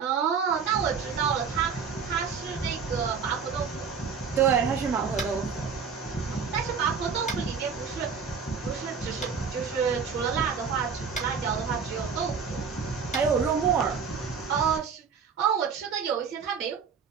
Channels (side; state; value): left; quieter; 6.0 dB